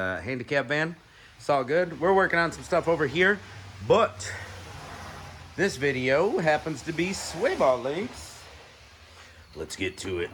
handicap van. It's all good. We're working on some stuff over here, but this video happens to be sway bar links. Let's get to it.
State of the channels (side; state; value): both; identical; correlation 1.00